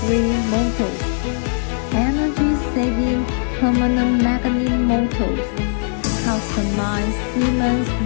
motors, energy-saving permanent magnet motors, customized Siemens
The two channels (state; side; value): silent; right; 65 dB below the other